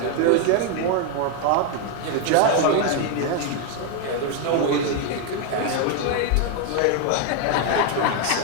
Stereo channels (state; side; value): different; both; correlation 0.00